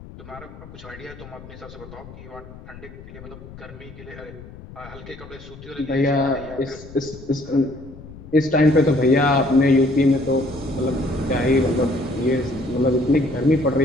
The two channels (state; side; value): noise; left; rumble, 17 dB below the sound